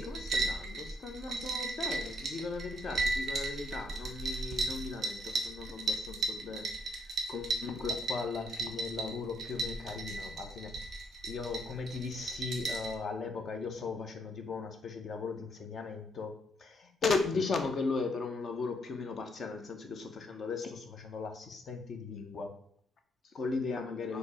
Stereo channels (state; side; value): normal; both; correlation 0.70